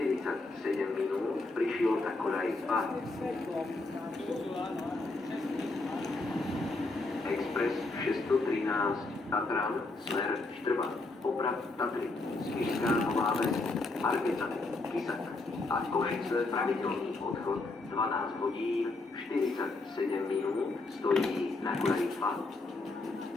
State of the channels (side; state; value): right; quieter; 3.2 dB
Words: minút, prišiel na koľaj 2. Expres 613 Tatran, smer Štrba, Oprad, Tatry, Spišská Nová Ves, Margecany, Kisak a Košice, pravidelný odchod 12 hodín 47 minút, stojí na koľaj 2.